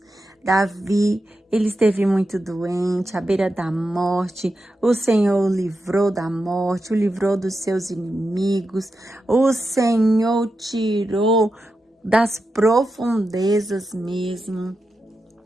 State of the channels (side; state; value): both; normal; correlation 0.88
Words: Davi, ele esteve muito doente, à beira da morte. O Senhor o livrou da morte, o livrou dos seus inimigos. O Senhor tirou das profundezas mesmo.